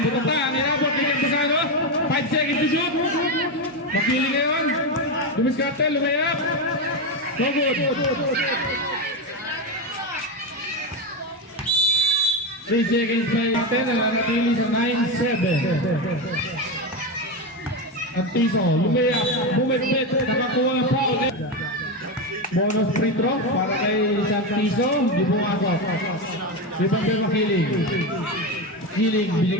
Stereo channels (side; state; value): both; normal; correlation 0.14